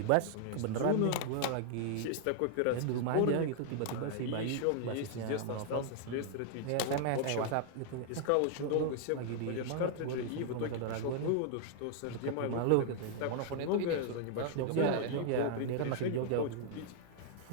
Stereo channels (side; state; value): both; different; correlation 0.00